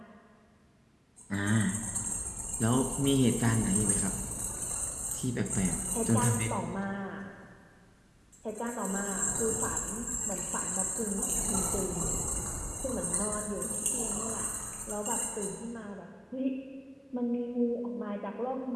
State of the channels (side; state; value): both; identical; correlation 1.00